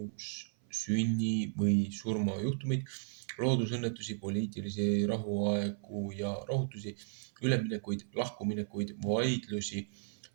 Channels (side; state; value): left; silent; 55 dB below the other